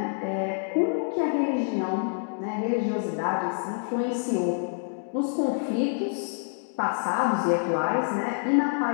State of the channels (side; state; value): right; silent; digital silence